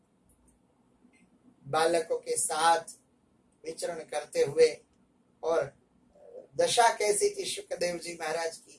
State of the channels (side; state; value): both; identical; correlation 1.00